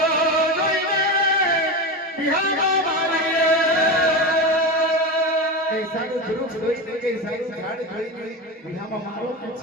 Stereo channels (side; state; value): both; normal; correlation 0.21